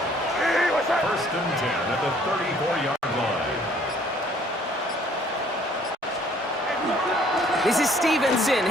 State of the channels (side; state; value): both; normal; correlation 0.59